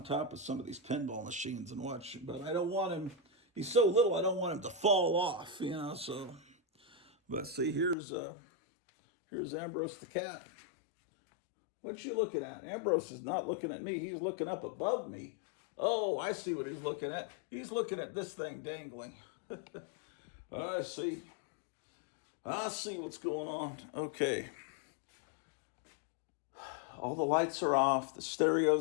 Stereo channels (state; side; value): drops out; right; at 8.0 s